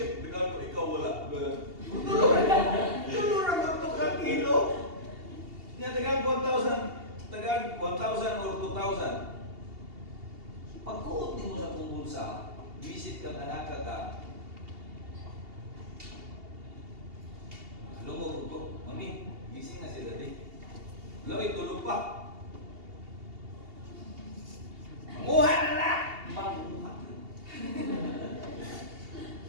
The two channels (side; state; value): left; late; 2.8 ms